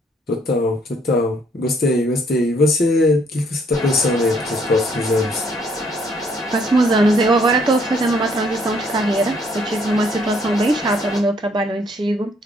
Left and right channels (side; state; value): both; normal; correlation 0.67